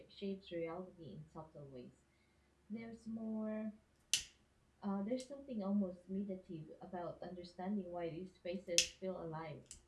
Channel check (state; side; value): identical; both; correlation 1.00